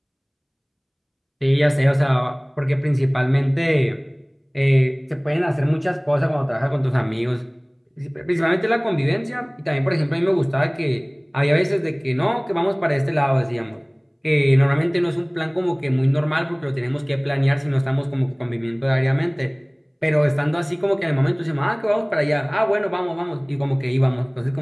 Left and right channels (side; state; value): both; identical; correlation 1.00